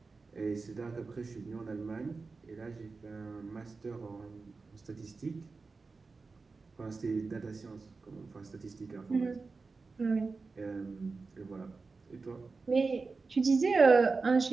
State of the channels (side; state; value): left; quieter; 4.2 dB